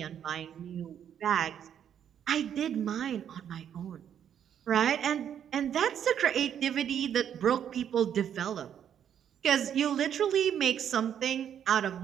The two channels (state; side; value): quieter; left; 9.2 dB